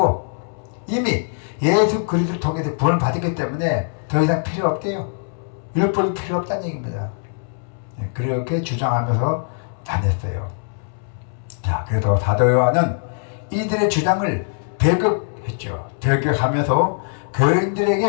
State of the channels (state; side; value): silent; right; 65 dB below the other